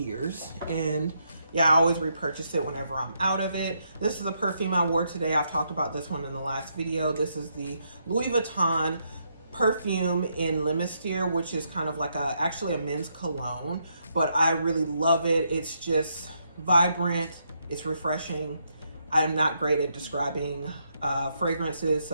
And yeah, I always repurchase it whenever I'm out of it. This is a perfume I wore today. I've talked about this one in the last video. This is the Louis Vuitton perfume in Limistier, which is kind of like actually a men's cologne, but I really love it. It's just vibrant. It's refreshing. I am not great at describing fragrances,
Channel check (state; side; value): inverted; both; correlation -0.77